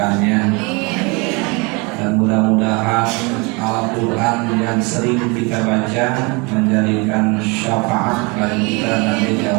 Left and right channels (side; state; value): left; quieter; 28.8 dB